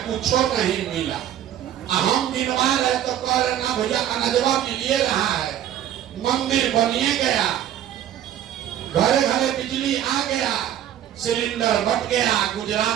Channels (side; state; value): left; quieter; 11.1 dB